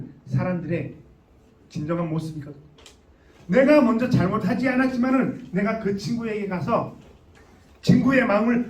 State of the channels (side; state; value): both; identical; correlation 1.00